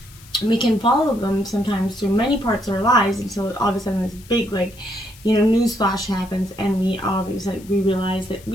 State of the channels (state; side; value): noise; left; hiss, 23 dB below the sound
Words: we can follow them sometimes through many parts of our lives until all of a sudden this big, news flash happens, and we realize that